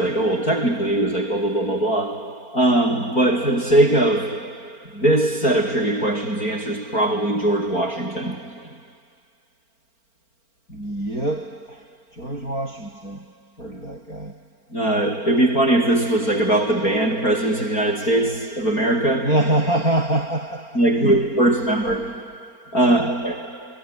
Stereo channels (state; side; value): late; right; 4.4 ms